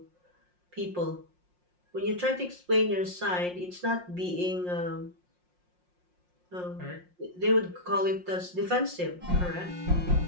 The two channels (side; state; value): left; late; 5.6 ms